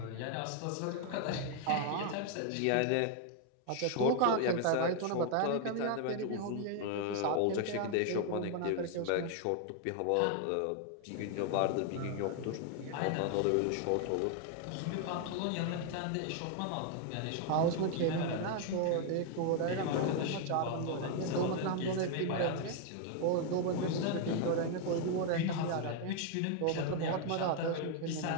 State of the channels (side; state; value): both; different; correlation 0.00